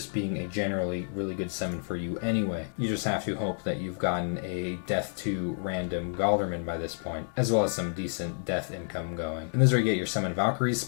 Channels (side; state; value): right; silent; digital silence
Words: being a generally really good summon for you anyway. You just have to hope that you've gotten a death to random Gal-durman by this point, as well as some decent death income going. And this is where you get your Summon Valkyries